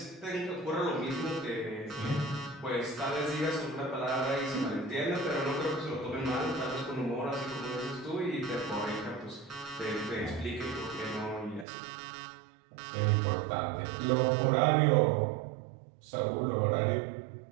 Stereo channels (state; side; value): drops out; left; at 11.7 s